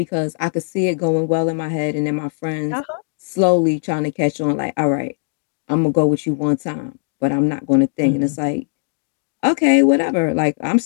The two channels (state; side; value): silent; right; digital silence